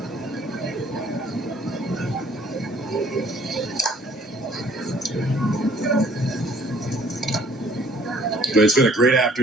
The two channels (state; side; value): normal; both; correlation 0.58